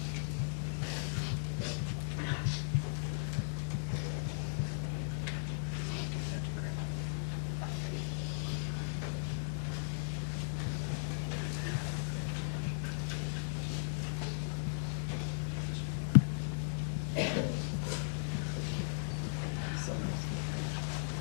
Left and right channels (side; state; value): right; silent; digital silence